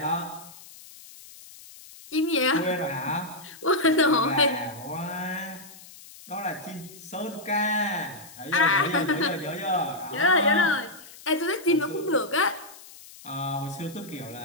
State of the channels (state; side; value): noise; left; hiss, 19 dB below the sound